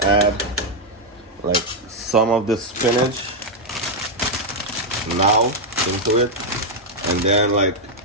add like some of the spinach now into it, and then like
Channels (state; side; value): normal; both; correlation 0.00